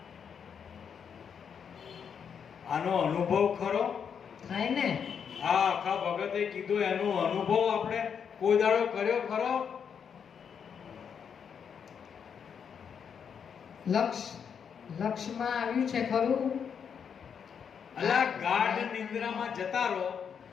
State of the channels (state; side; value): quieter; right; 7.2 dB